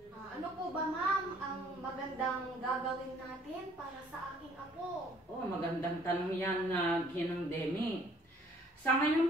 Ano po ba, ma'am, ang magandang gagawin natin para sa aking apo? Oh, magandang tanong yan na Ginang Demi. Sa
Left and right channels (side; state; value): both; normal; correlation 0.59